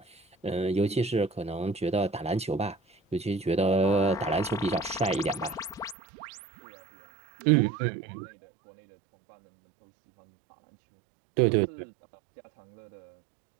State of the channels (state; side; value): drops out; left; at 6.0 s